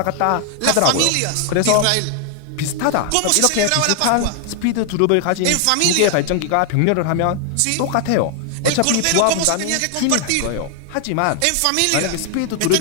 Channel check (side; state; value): both; different; correlation 0.00